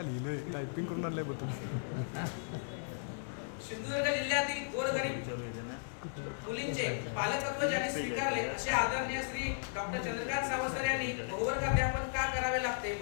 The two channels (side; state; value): right; silent; digital silence